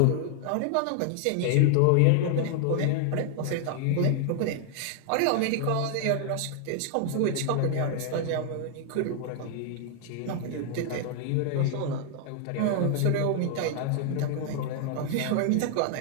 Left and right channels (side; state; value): both; different; correlation 0.00